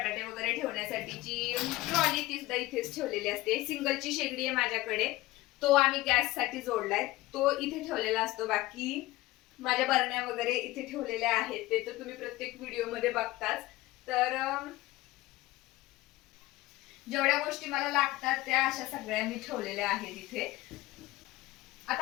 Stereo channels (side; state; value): right; quieter; 18.5 dB